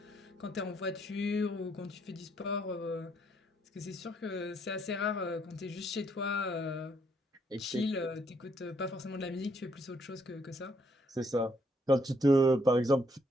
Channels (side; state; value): both; normal; correlation 0.71